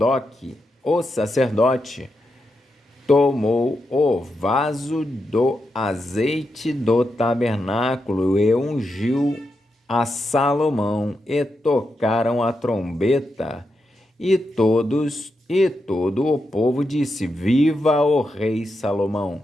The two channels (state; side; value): normal; both; correlation 0.86